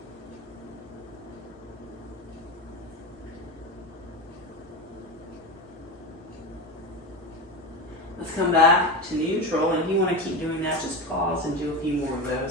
Let's come back to neutral, and if you want to keep doing that, just pause and do a few more of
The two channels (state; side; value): normal; both; correlation 0.21